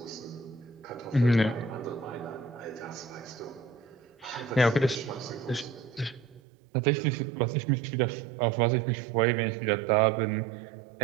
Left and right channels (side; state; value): left; drops out; at 6.4 s